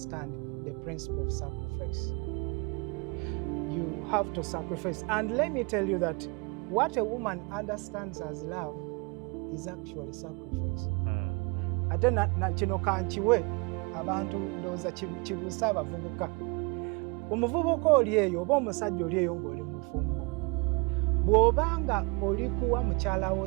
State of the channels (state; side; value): quieter; left; 30.1 dB